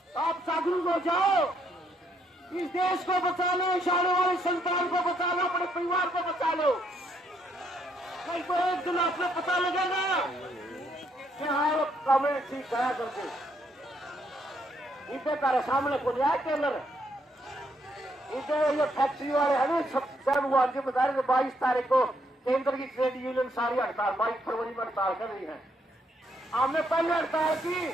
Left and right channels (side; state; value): both; normal; correlation 0.73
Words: आप जागरूक हो जाओ, इस देश को बचा लो, इस आने वाली संतान को बचा लो, अपने परिवार को बचा लो। नहीं तो एक दिन आपने पता लगेगा कि हाँ वो कमेंट ठीक है करके। इधर तारे सामने को लिया टेलर, इधर ये फैक्ट्री वाले है ना, सब वो आज बता रहे 22 तारीख को केंद्र की ट्रेड यूनियन सारी हड़ताल 22 फरवरी में हड़ताल कर रही है। हमने पहले हड़ताल की